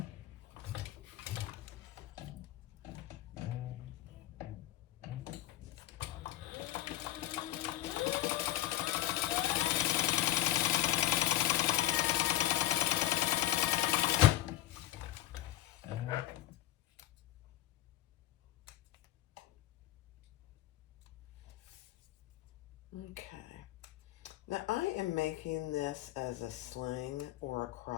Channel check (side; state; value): right; quieter; 15.1 dB